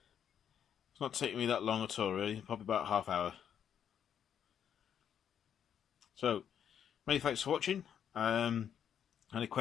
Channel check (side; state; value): right; quieter; 8.8 dB